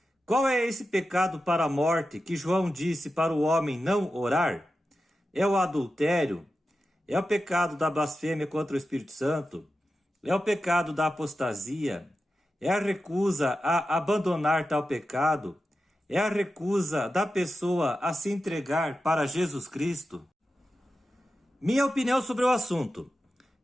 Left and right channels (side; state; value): both; normal; correlation 0.91